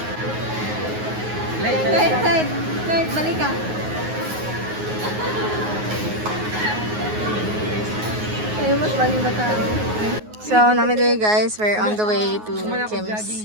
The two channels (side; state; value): left; late; 9.5 ms